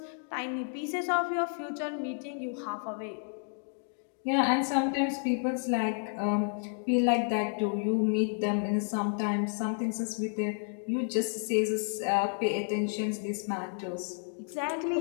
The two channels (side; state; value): right; silent; 57 dB below the other